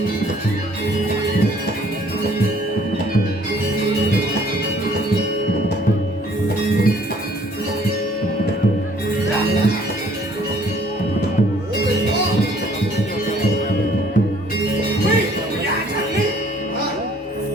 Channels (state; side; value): normal; both; correlation 0.59